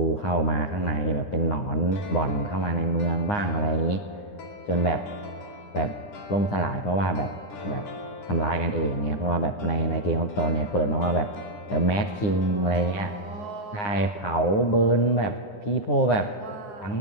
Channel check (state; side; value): late; right; 9.7 ms